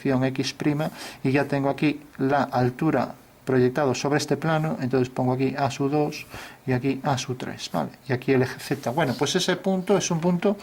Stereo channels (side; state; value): both; identical; correlation 1.00